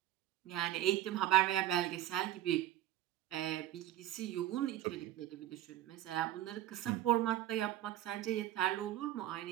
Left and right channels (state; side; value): quieter; left; 13.1 dB